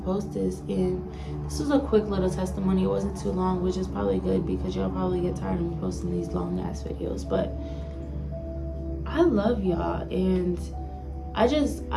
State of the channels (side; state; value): both; identical; correlation 1.00